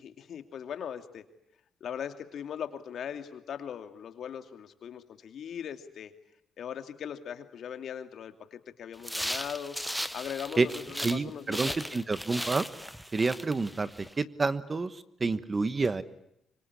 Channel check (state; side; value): normal; both; correlation 0.89